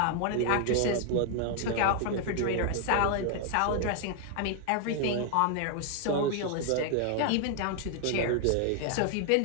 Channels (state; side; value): different; both; correlation 0.00